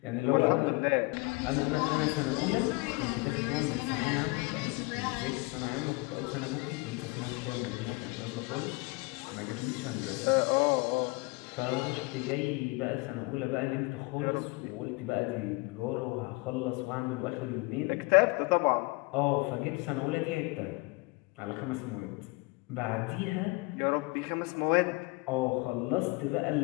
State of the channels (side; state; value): right; quieter; 25.3 dB